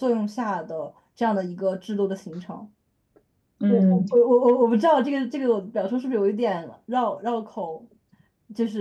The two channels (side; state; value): both; identical; correlation 1.00